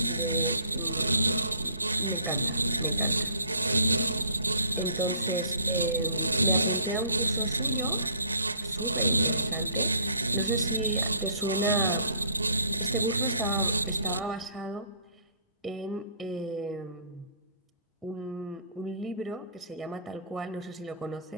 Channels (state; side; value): inverted; both; correlation -0.57